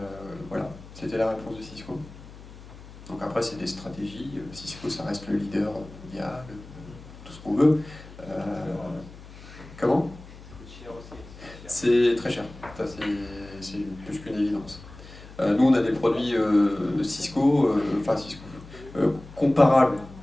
voilà, c'était la réponse de Cisco. Donc après, c'est des stratégies. Cisco, ça reste le leader mondial, tout ce qu'on veut. Comment? Ça coûte cher aussi. C'est très cher. Ça, c'est plus qu'une évidence. Nous, on a des produits Cisco, comparables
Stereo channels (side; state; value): left; noise; hum, 17 dB below the sound